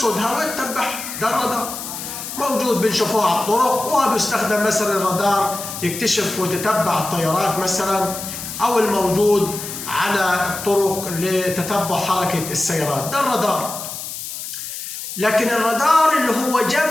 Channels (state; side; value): noise; left; hiss, 8 dB below the sound